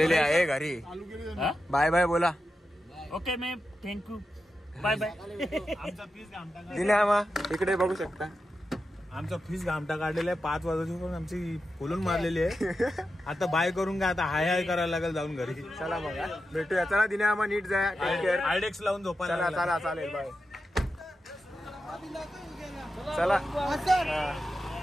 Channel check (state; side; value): normal; both; correlation 0.90